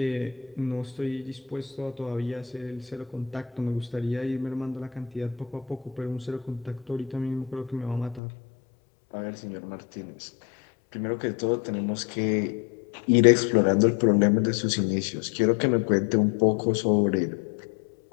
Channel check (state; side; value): drops out; right; at 8.2 s